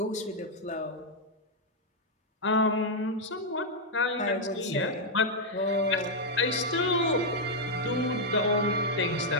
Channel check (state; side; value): normal; both; correlation -0.02